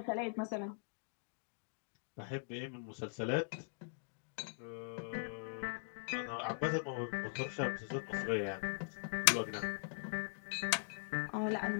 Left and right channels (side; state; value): right; silent; digital silence